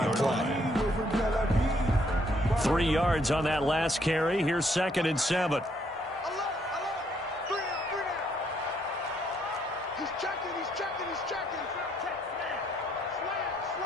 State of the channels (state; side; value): normal; both; correlation 0.70